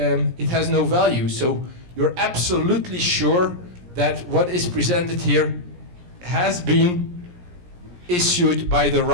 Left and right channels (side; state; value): left; late; 17 ms